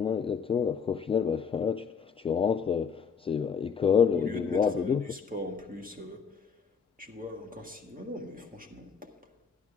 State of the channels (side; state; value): right; quieter; 6.4 dB